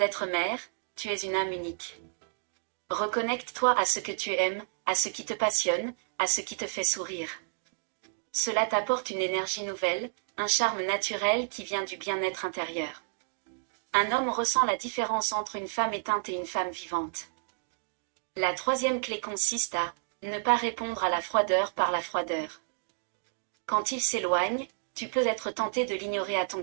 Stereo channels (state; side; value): silent; left; digital silence